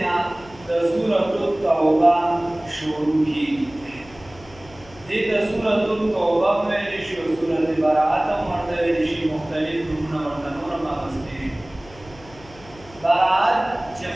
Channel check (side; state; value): left; noise; hum, 22 dB below the sound